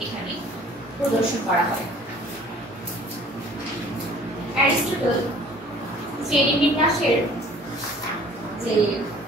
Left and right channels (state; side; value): normal; both; correlation 0.51